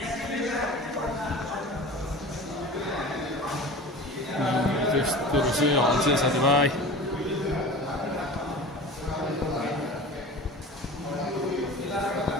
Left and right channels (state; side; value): normal; both; correlation 0.36